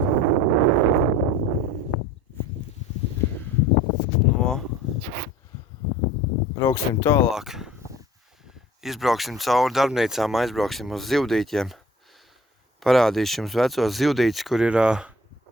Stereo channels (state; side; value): normal; both; correlation 0.47